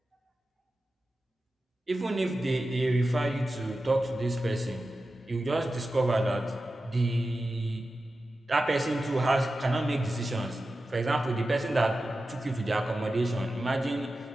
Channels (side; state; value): both; normal; correlation 0.93